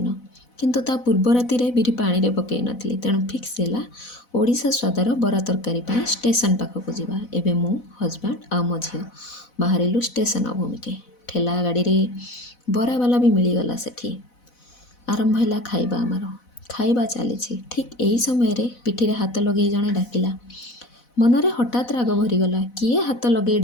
किंतु ता पूर्व राति रे बिरी पानी रे पकई नथली तेणु फिक्स हैला ओडिशा स्वादर बरा तरकारी पई स्टेशन पाखक जीवा। एबे मो हजबैंड आ मो झियो बाहरिलु स्टेशन अभिमुखे। ठेला गाड़ी रे बरा वाला भी मिलीगला सेठी। आरंभ हैला खाइबा आमार। खाइबा चलीछि ठीक एही समय रे पिठी रे हाथ लगेई जणे डाकिला। मनरे हठात राग भरीगला। किए हाथ लगे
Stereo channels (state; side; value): late; right; 4.0 ms